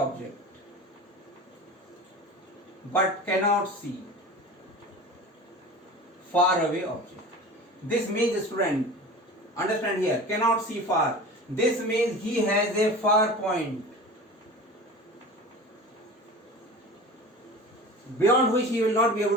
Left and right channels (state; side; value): normal; both; correlation 0.36